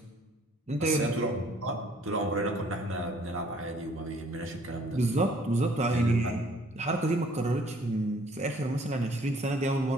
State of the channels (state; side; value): normal; both; correlation 0.59